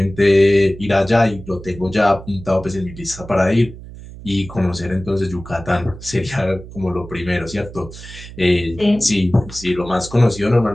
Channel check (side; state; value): right; noise; hum, 15 dB below the sound